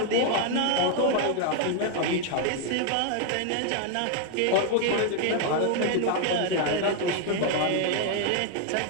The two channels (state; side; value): different; both; correlation 0.00